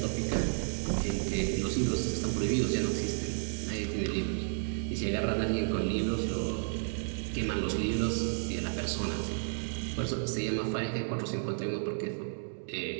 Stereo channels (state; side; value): silent; left; digital silence